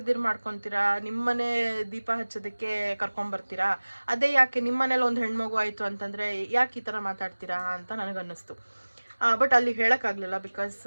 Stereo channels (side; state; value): both; inverted; correlation -1.00